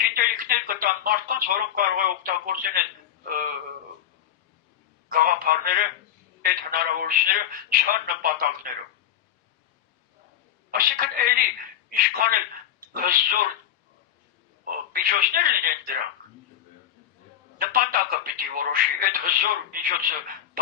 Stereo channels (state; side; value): quieter; right; 10.7 dB